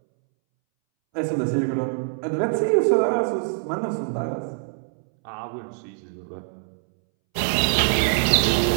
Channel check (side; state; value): left; silent; 63 dB below the other